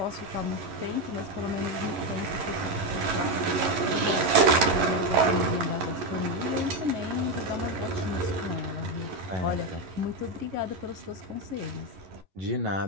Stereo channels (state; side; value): late; left; 11 ms